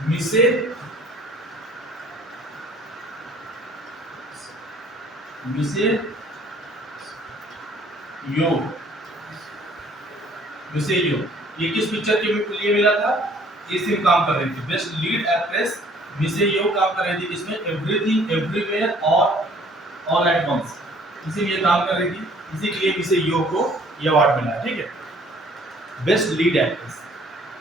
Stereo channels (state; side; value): normal; both; correlation 0.57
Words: मिसे मिसे यो, मिसे यो, ये किस पिक्चर के लिए मिला था? ये सिर्फ काम कर रही थी बेस्ट लीड एक्ट्रेस, मिसे यो काम कर रही थी इसमें everything everywhere all at once, इसीलिए काम कर रही थी, इसीलिए मिसे यो को ये अवार्ड मिला है। ठीक है, बेस्ट लीड एक्ट्रेस।